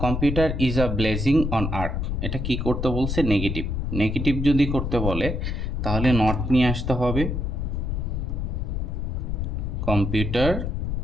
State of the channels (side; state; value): left; noise; rumble, 1 dB below the sound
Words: computer is a blazing on earth. এটা কি করতে বলছে? নেগেটিভ। নেগেটিভ যদি করতে বলে তাহলে নট নিয়ে আসতে হবে। কম্পিউটার